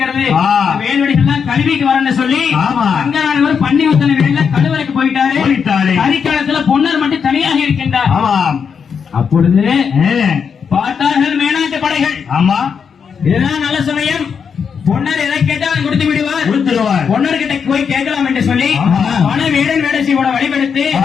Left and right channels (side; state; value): right; quieter; 6.6 dB